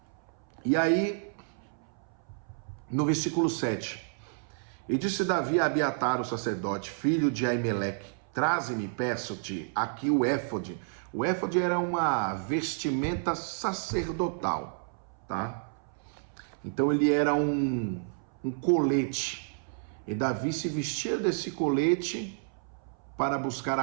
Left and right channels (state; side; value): silent; left; 58 dB below the other